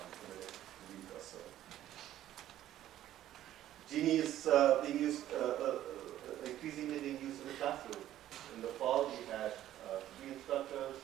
the next week or so. GENI is being used, increasingly being used in the classroom. In the fall, we had 3 instructors,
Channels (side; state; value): left; quieter; 12.7 dB